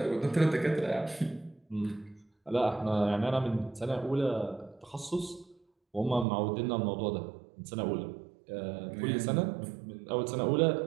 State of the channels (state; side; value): drops out; left; at 6.2 s